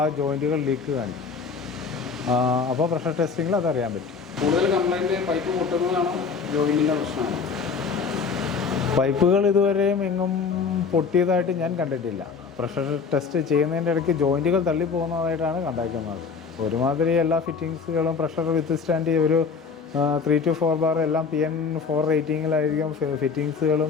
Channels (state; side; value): quieter; right; 5.4 dB